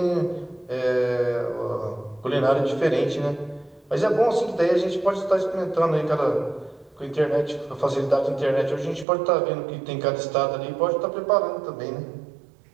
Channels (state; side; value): drops out; left; at 9.1 s